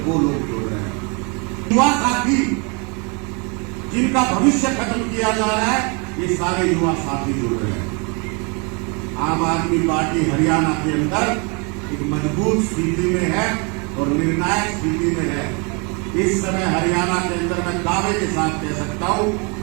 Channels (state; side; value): quieter; left; 32.8 dB